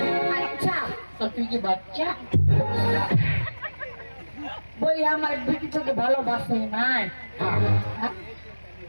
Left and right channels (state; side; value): inverted; both; correlation -1.00